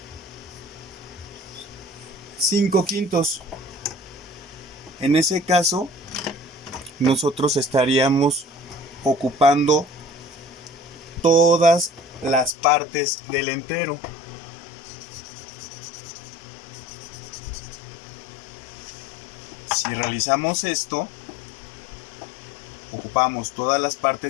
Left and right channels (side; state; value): right; drops out; at 12.5 s